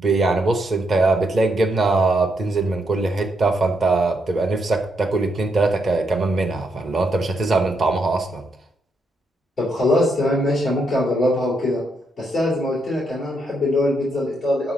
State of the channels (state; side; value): normal; both; correlation 0.79